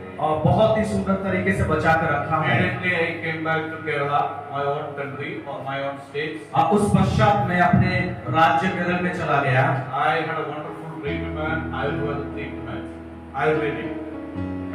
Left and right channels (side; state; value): both; identical; correlation 1.00